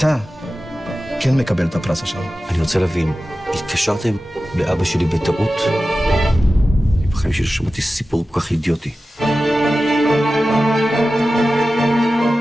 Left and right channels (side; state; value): both; normal; correlation 0.94